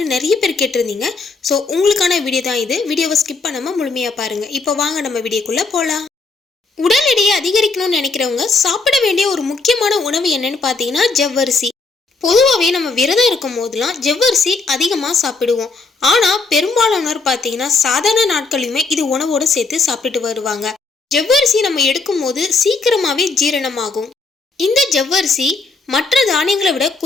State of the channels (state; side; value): quieter; right; 4.0 dB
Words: நிறைய பேர் கேட்டிருந்தீங்க. ஸோ உங்களுக்கான வீடியோ தான் இது. வீடியோவை ஸ்கிப் பண்ணாம முழுமையா பாருங்க. இப்போ வாங்க நம்ம வீடியோக்குள்ள போகலாம். உடல் எடையை அதிகரிக்கணும்னு நினைக்கிறவங்க சாப்பிட வேண்டிய ஒரு முக்கியமான உணவு என்னன்னு பார்த்தீங்கன்னா ஜவ்வரிசி. பொதுவாகவே நம்ம விரதம் இருக்கும் போதெல்லாம் ஜவ்வரிசி அதிகமாக சாப்பிடுவோம். ஆனால் பெரும்பாலானோர் பார்த்தீங்கன்னா சாதாரண நாட்களையுமே இது உணவோடு சேர்த்து சாப்பிட்டு வருவாங்க. ஜவ்வரிசி நம்ம எடுக்கும் போது சீக்கிரமாகவே ஜீரணமாகும். இந்த ஜவ்வரிசி மற்ற தானியங்களை விட